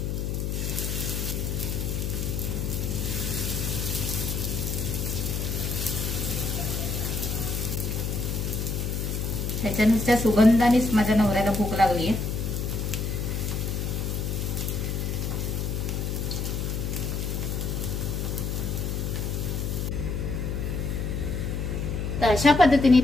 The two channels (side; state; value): left; noise; hum, 1 dB below the sound